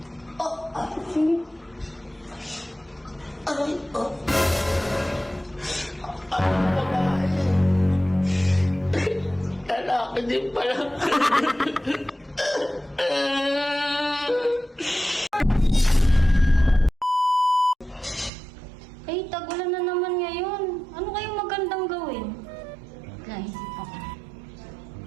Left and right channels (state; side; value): drops out; left; at 18.3 s